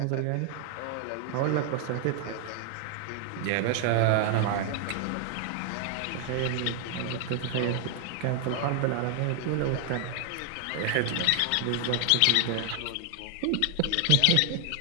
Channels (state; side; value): different; both; correlation 0.00